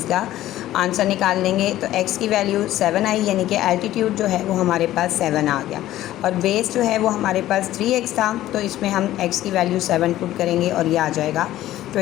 आंसर निकाल लेंगे। तो x की वैल्यू 7 आई यानी कि एल्टीट्यूड जो है वो हमारे पास 7 आ गया और बेस जो है वो हमारे पास 3x था तो इसमें हम x की वैल्यू 7 पुट करेंगे और ये आ जाएगा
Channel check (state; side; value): quieter; right; 14.2 dB